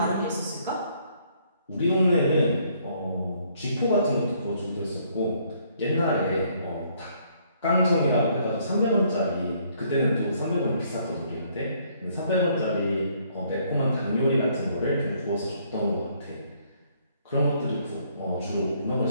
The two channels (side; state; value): both; inverted; correlation -0.66